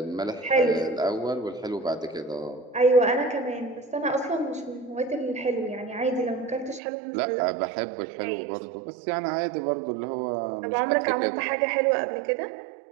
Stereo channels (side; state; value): left; drops out; at 6.8 s